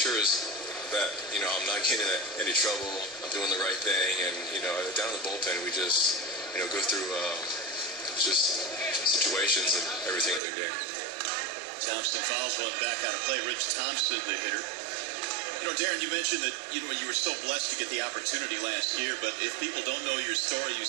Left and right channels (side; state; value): left; drops out; at 10.4 s